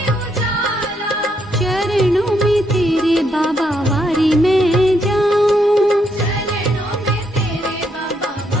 उजाला, चरणों में तेरे बाबा वारी में जाऊं, चरणों में तेरे बाबा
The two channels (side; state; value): both; normal; correlation 0.76